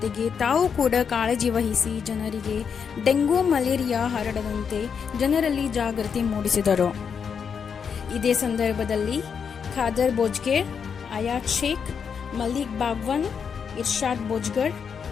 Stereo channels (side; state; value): right; quieter; 6.7 dB